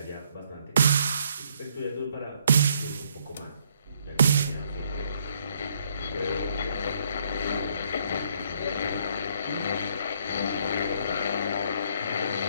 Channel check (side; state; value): both; inverted; correlation -0.69